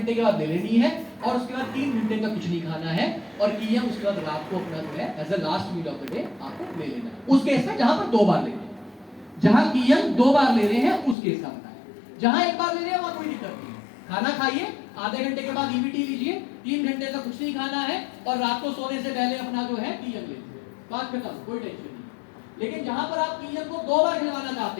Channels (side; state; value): right; drops out; at 11.2 s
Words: के बाद ले लेनी है, और उसके बाद 3 घंटे तक कुछ नहीं खाना है, और कियन उसके बाद रात को अपना जो है as a last meal of the day आपको ले लेना है। उस केस में जहां पर 2 बार ले रहे हैं, जहां कियन 2 बार ले रहे हैं उस केस का बताएं। जहां एक बार ले रहे हैं वहां कोई दिक्कत नहीं है, खाना खाइए, आधे घंटे के बाद ईवीटी लीजिए, 3 घंटे तक कुछ नहीं खाना है, और रात को सोने से पहले अपना जो है कियन ले लीजिए, बात खत्म, कोई टेंशन नहीं। लेकिन जहां पर आप कियन को 2 बार खिलवाना चाहते